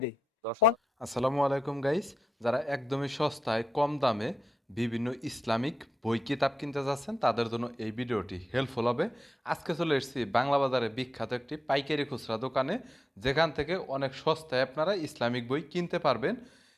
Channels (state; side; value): normal; both; correlation 0.89